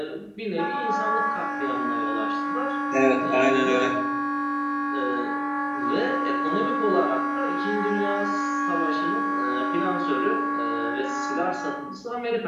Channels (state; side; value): identical; both; correlation 1.00